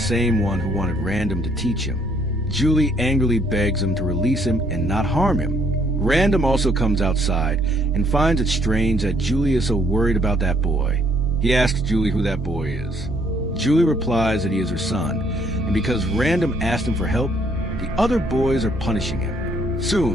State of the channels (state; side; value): normal; both; correlation 0.67